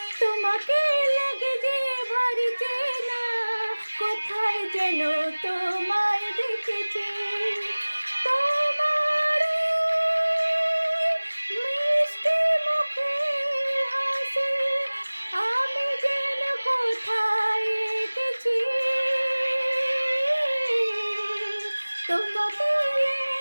তোমাকে লাগে যে ভারী চেনা, কোথায় যেন তোমায় দেখেছি। তোমার এই মিষ্টি মুখের হাসি আমি যেন কোথায় এঁকেছি। তোমাকে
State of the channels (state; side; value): inverted; both; correlation -1.00